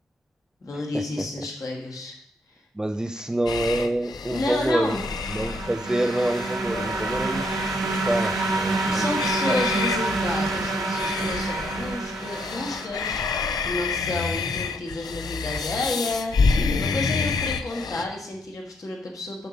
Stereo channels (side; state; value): both; normal; correlation 0.73